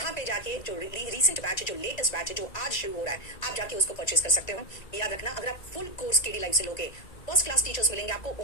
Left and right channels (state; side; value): late; right; 1.9 ms